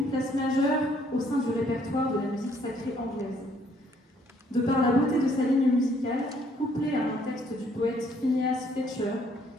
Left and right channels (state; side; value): normal; both; correlation 0.65